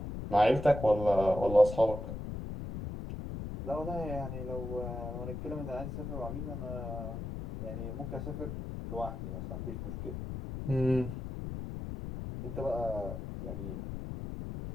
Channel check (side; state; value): left; noise; rumble, 6 dB below the sound